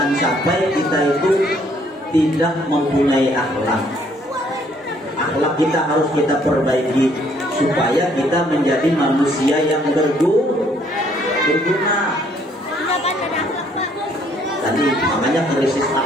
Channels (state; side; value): normal; both; correlation 0.65